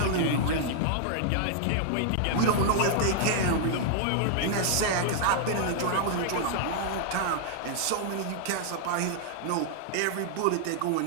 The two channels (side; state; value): both; different; correlation -0.01